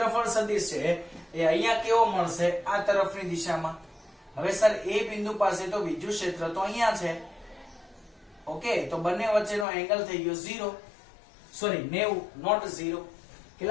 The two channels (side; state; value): right; drops out; at 9.7 s